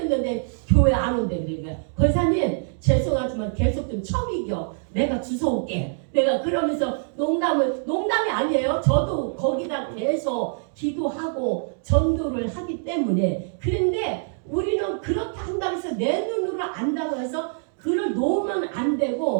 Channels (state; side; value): silent; left; digital silence